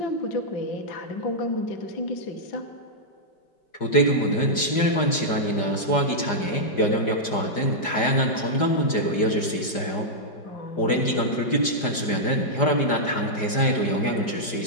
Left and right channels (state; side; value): late; right; 5.0 ms